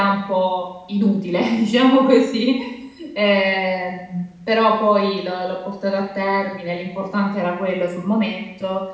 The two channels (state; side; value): identical; both; correlation 1.00